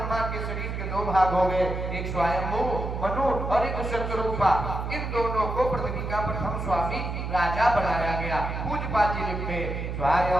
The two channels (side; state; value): right; noise; hum, 4 dB below the sound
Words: के शरीर के दो भाग हो गए, एक स्वयंभू मनु और एक शतरूपा। इन दोनों को पृथ्वी का प्रथम स्वामी राजा बनाया गया। पूज्यपाद जी लिखते